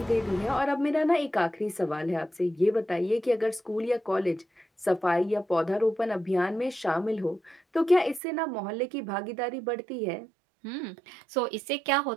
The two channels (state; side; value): drops out; left; at 8.2 s